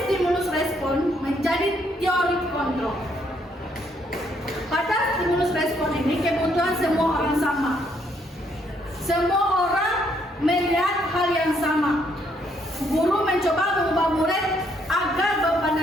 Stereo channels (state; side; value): normal; both; correlation 0.71